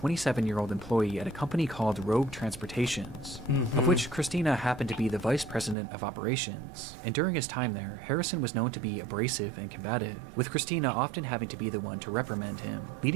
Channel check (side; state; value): left; drops out; at 5.8 s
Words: employee at a company called Rogue Transportations, of which Christina happened to be the vice president of operations, and during his time there, Harrison was known to be abrasive and combative, with Christina often having to be the one to reprimand him,